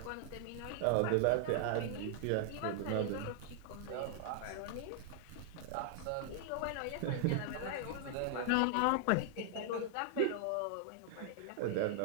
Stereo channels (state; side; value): different; both; correlation 0.00